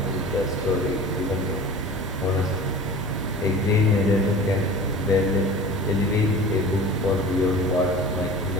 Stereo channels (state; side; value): normal; both; correlation 0.39